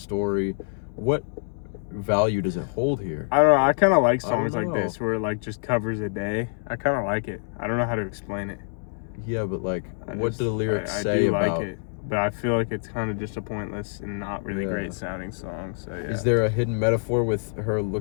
What value does it hold here? I don't know. I kind of like I don't songs like know. this where it like just covers a day. I kind of like it. I don't know how to explain it. Yeah, but like, what do the lyrics I say do about? like it, but I feel like it's kind of just a pointless and not really Yeah. great sounding song. So yeah. Is there a hidden metaphor with her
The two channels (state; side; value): silent; right; 61 dB below the other